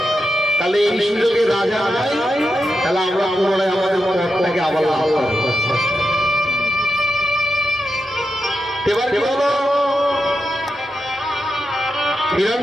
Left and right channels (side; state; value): both; normal; correlation 0.87